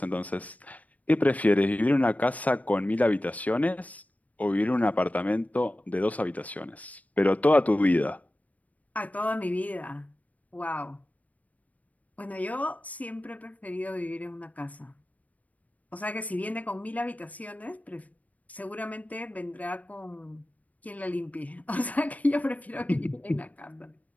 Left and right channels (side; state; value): right; late; 0.073 ms